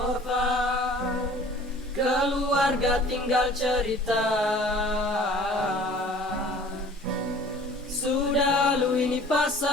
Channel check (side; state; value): both; normal; correlation 0.49